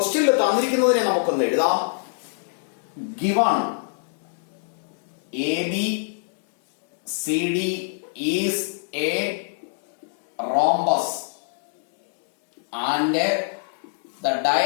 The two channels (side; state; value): right; silent; digital silence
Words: തന്നിരിക്കുന്നതിനെ നമുക്കൊന്ന് എഴുതാം. Given A B C D is a rhombus and the